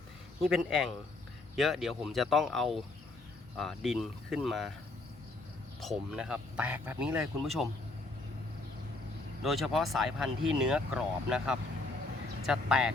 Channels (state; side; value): quieter; right; 3.1 dB